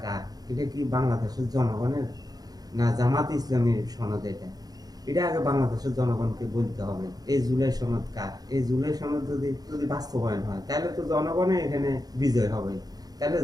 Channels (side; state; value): left; late; 0.19 ms